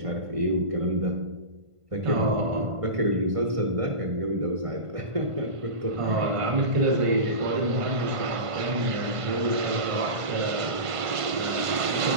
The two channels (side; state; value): left; late; 1.5 ms